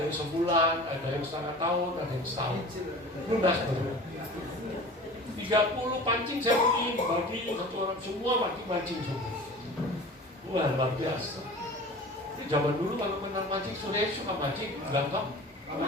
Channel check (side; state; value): both; normal; correlation 0.39